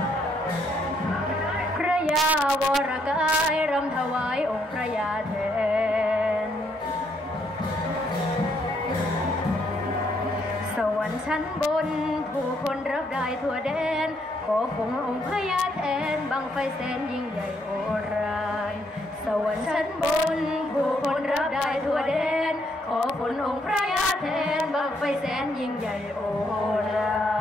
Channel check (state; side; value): normal; both; correlation 0.73